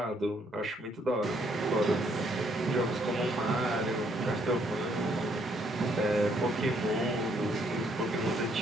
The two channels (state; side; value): normal; both; correlation 0.69